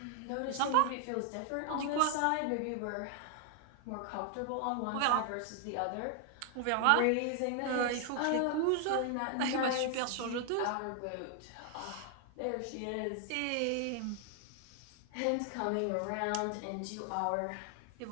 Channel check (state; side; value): different; both; correlation 0.00